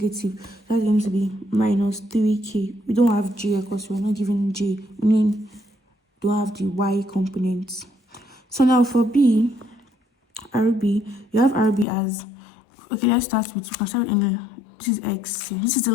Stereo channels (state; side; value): drops out; right; at 11.9 s